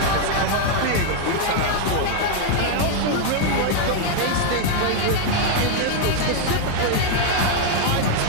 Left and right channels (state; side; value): different; both; correlation 0.00